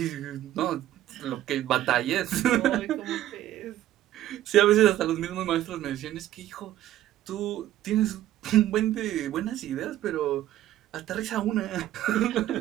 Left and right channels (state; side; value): quieter; left; 13.3 dB